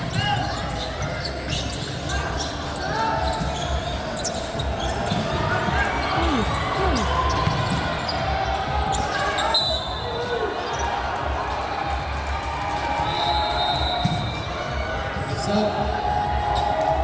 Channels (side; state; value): both; identical; correlation 1.00